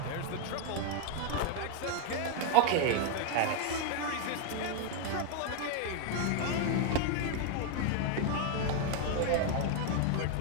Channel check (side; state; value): both; different; correlation 0.01